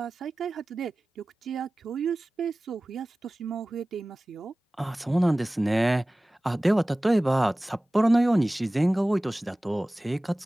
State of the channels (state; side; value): normal; both; correlation 0.97